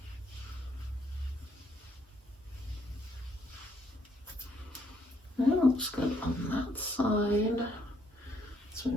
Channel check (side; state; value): both; normal; correlation 0.70